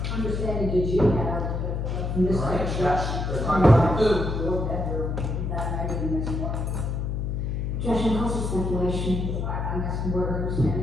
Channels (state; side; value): noise; left; hum, 1 dB below the sound